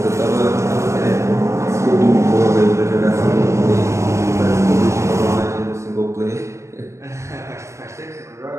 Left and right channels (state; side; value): late; left; 0.14 ms